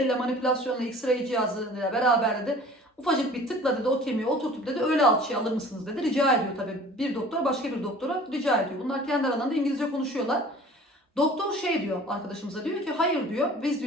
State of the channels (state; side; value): normal; both; correlation 0.46